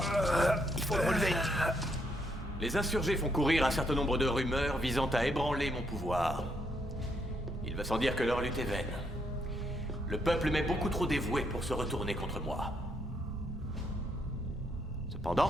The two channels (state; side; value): normal; both; correlation 0.75